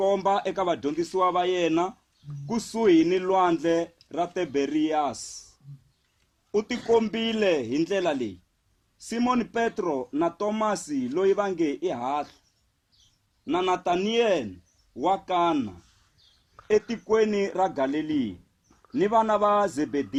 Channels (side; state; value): both; identical; correlation 1.00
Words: eka vadyondzisiwa va yena kusuhi ni lwandle ra Tiberiyasi. U tikombile hi ndlela leyi: Simon Petro na Tomasi loyi va nge i Hahla, na Nataniyeli wa Kana etikweni ra Galileya, ni vana va